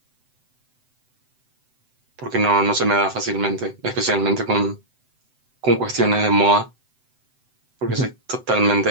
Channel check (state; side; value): late; left; 7.8 ms